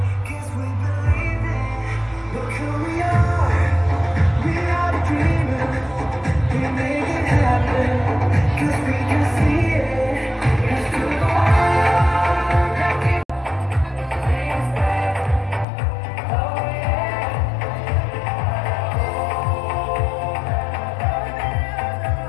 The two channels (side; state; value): right; drops out; at 15.7 s